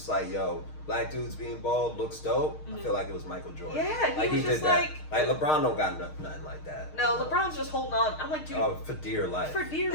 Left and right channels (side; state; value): right; late; 6.5 ms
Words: like, yo, black dudes being bald looks dope, I feel like it was Michael Jordan. Yeah, he Like, was he just did that. like, Like, LeBron don't got nothing like that. no, LeBron's just holding on. I'm like, dude, Oh, for dear life. for dear,